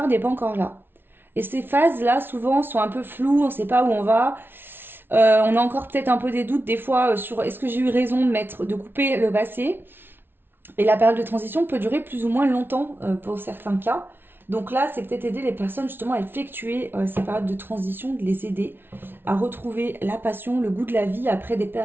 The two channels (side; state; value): left; late; 0.11 ms